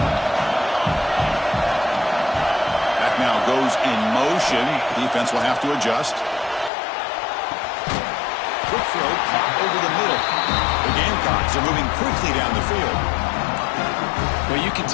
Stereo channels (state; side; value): drops out; right; at 6.7 s